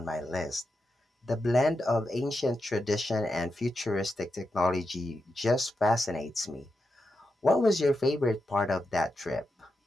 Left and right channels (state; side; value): normal; both; correlation 0.87